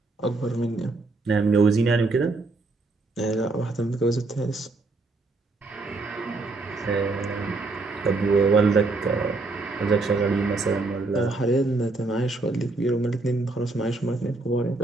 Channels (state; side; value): quieter; left; 3.4 dB